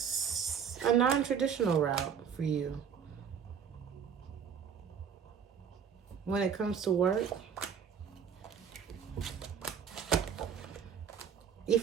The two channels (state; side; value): quieter; left; 7.4 dB